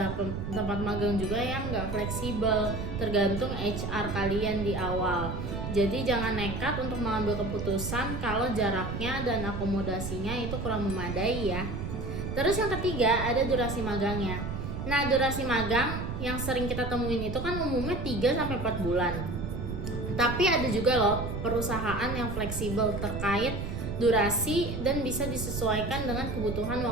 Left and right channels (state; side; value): noise; right; rumble, 5 dB below the sound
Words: tempat magang juga yang nggak fleksibel, tergantung HR kalian di awal. Jadi jangan nekat untuk mengambil keputusan kalau jaraknya dan akomodasinya itu kurang memadai ya. Terus yang ketiga ada durasi magangnya. Nah, durasi magang yang sering kita temuin itu kan umumnya 3-4 bulan. Tapi ada juga loh perusahaan yang fleksibel terkait durasi dan bisa disesuaikan dengan kebutuhan